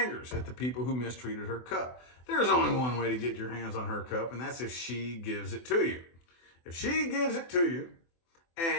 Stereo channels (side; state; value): right; late; 24 ms